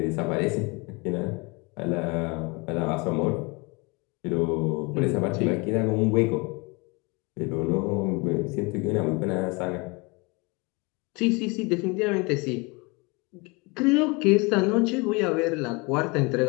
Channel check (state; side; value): quieter; right; 27.8 dB